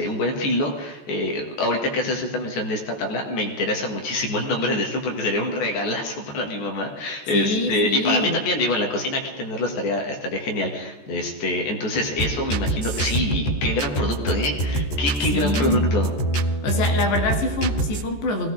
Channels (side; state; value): right; late; 14 ms